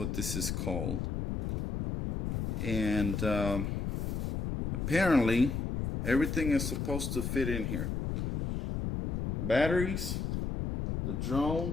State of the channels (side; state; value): left; noise; rumble, 2 dB below the sound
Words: this is called. And apparently everything is supposed to fit in here. Batteries, the